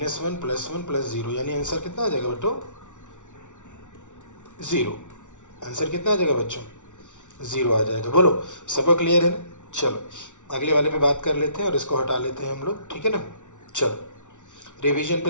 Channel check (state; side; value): late; right; 0.86 ms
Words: प्लस 1 प्लस 0, यानी आंसर कितना आ जाएगा बच्चों 0। आंसर कितना आ जाएगा बच्चों 0 आ जाएगा। बोलो सबको क्लियर है ना। चलो अगले वाले पे बात कर लेते हैं और इसको हटा लेते हैं हम लोग, ठीक है ना। चलो रिवीजन पे